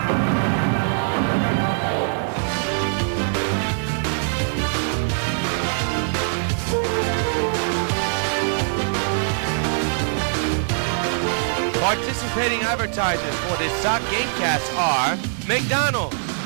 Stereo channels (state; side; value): silent; left; digital silence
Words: Participating advertisers for this Sox Gamecast are McDonald's,